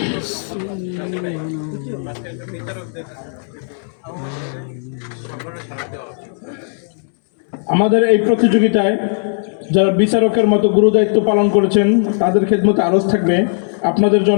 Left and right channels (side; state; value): right; silent; 68 dB below the other